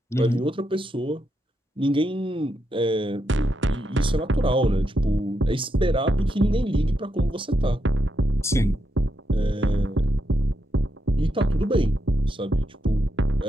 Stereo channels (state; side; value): normal; both; correlation 0.83